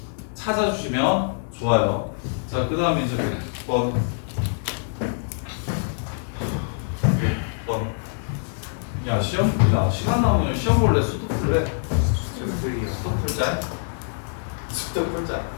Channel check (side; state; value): right; silent; digital silence